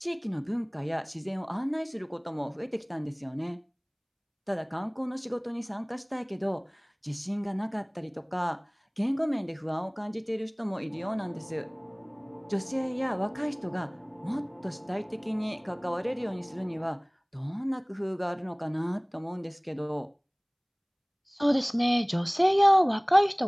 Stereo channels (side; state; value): both; identical; correlation 1.00